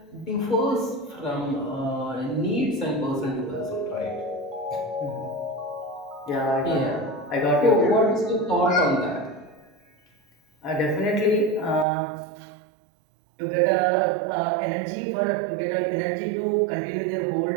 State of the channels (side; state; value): left; drops out; at 11.9 s